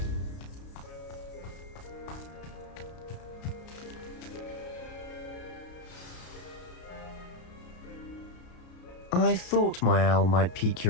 I thought my owl might pique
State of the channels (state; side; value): late; right; 33 ms